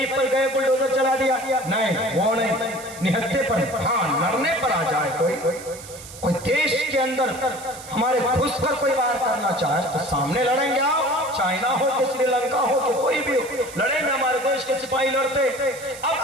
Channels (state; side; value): noise; right; hiss, 15 dB below the sound